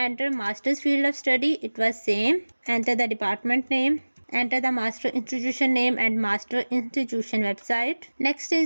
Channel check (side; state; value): both; inverted; correlation -1.00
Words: master's field of study, it was same. Enter the department name. Enter the master institution name and master institution website. Next